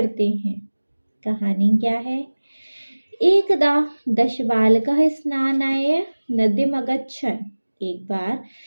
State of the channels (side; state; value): both; inverted; correlation -1.00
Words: हैं। कहानी क्या है। एकदा 10 बालकः स्नानाय नदीम अगच्छन्, एक बार